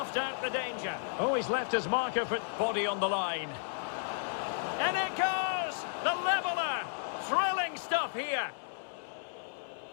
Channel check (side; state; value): right; silent; digital silence